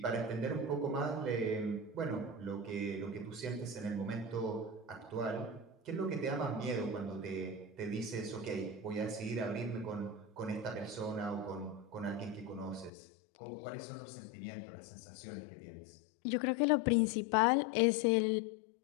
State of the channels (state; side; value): drops out; right; at 12.9 s